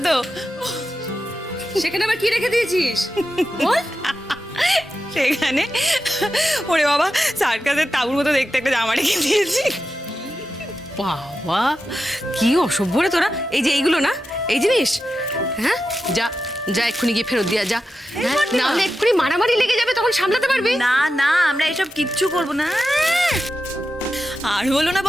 তো? সেখানে আবার কি রেখে দিয়েছিস বল। সেখানে ওরে বাবা, সার্কাসের তাঁবুর মতো দেখতে একটা জামা রেখে দিয়েছি। বাবা, কি অসভ্য রে তোরা। এই যে এইগুলো না, এই জিনিস, হ্যাঁ, যা যা এক্ষুনি গিয়ে ফেরত দিয়া যা। হ্যাঁ, না হলে এক্ষুনি মারামারি লেগে যাবে, তখন সামলাতে পারবি না না, আমরা এসব কিচ্ছু করবো না। আর বলো না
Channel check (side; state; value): both; normal; correlation 0.90